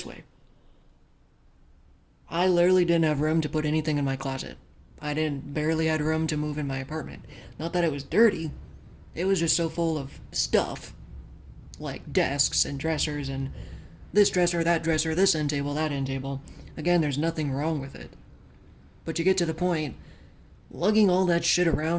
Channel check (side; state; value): both; identical; correlation 1.00